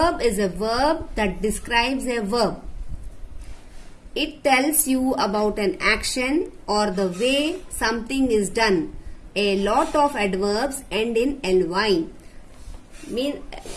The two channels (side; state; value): both; identical; correlation 1.00